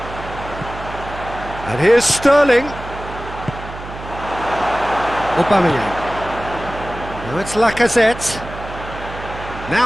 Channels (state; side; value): noise; right; hum, 12 dB below the sound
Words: And here's Sterling. Aubameyang. Now it's Lacazette.